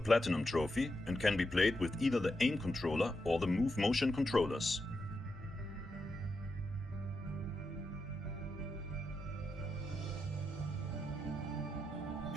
trophy and can be played with either the aim controller or the move motion controllers.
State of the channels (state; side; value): normal; both; correlation 0.85